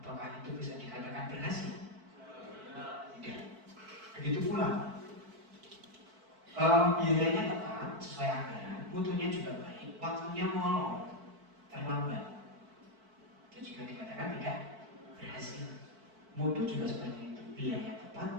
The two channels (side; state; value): left; late; 4.5 ms